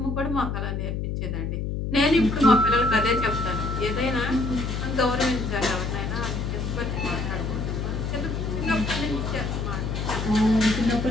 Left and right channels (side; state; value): left; noise; hum, 2 dB below the sound